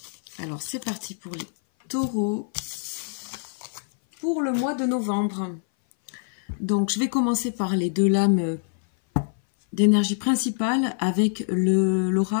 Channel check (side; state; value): right; silent; 58 dB below the other